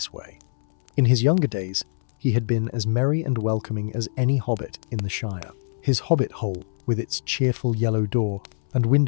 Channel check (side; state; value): right; silent; 63 dB below the other